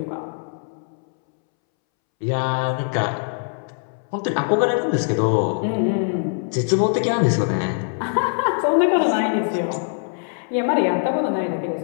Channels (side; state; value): right; silent; 64 dB below the other